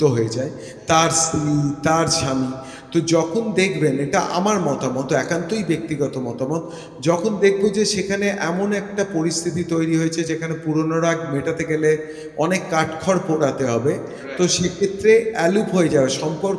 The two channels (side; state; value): both; identical; correlation 1.00